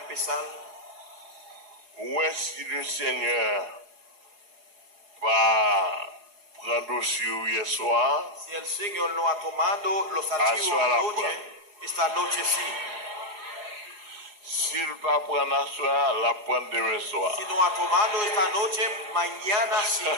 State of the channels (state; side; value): late; left; 4.8 ms